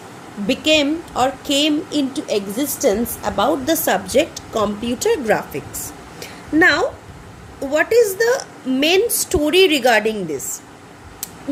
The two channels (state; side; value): identical; both; correlation 1.00